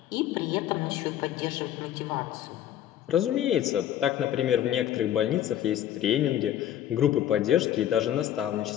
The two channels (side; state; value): right; quieter; 11.3 dB